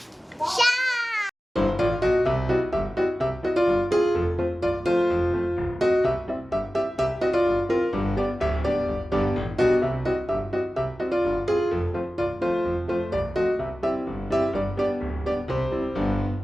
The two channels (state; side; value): normal; both; correlation 0.95